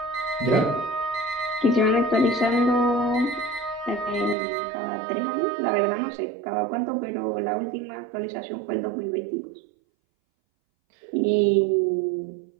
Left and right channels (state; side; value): drops out; left; at 4.4 s